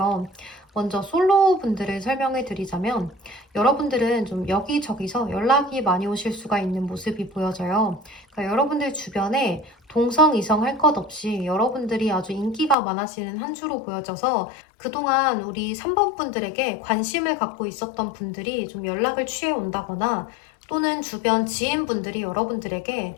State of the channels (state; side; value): drops out; right; at 12.8 s